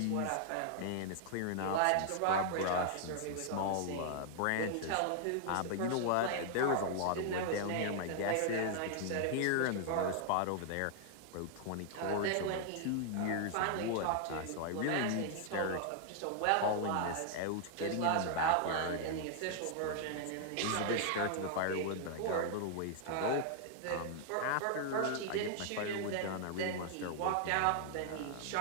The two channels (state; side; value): different; both; correlation 0.00